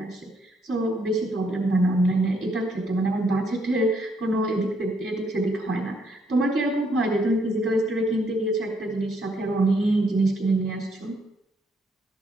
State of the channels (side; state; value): both; normal; correlation 0.72